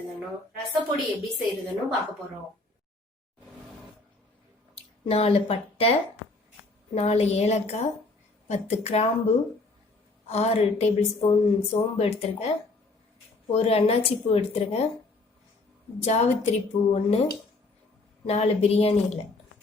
ரசப்பொடி எப்படி செய்யறதுன்னு பார்க்க போறோம். 4 பட்டை, 4 ஏலக்காய், 10 கிராம்பு, 6 டேபிள் ஸ்பூன் சோம்பு எடுத்துருக்கேன், ஒரு அன்னாச்சி பூ எடுத்துருக்கேன், ஜாவித்திரி பூ 1, 4 பிரியாணி இலை.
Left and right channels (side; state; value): right; quieter; 3.2 dB